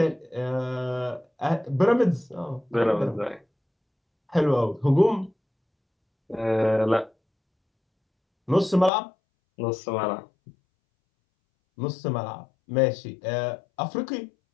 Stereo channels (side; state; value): right; drops out; at 8.9 s